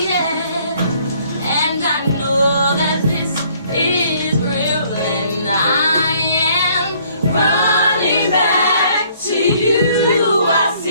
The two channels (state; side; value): inverted; both; correlation -0.62